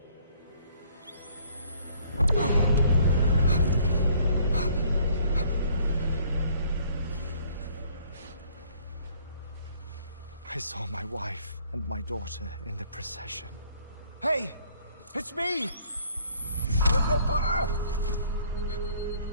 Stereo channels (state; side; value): inverted; both; correlation -0.60